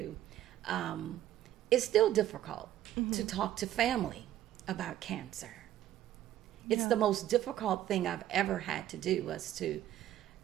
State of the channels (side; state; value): left; quieter; 12.6 dB